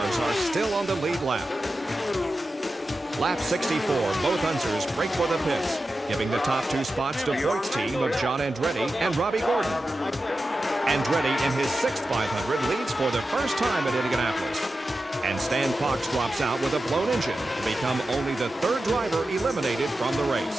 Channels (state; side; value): normal; both; correlation 0.92